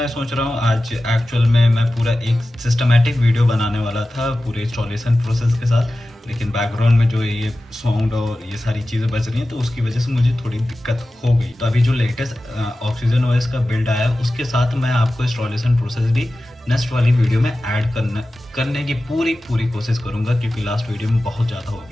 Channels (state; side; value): normal; both; correlation 0.95